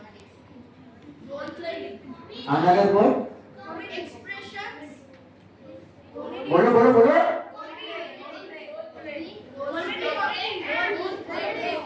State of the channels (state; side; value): identical; both; correlation 1.00